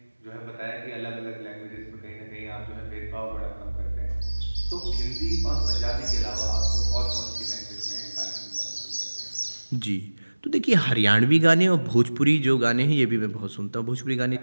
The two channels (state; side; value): inverted; both; correlation -1.00